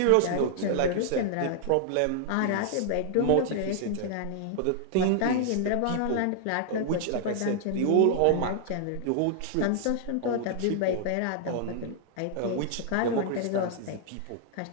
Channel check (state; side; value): different; both; correlation 0.00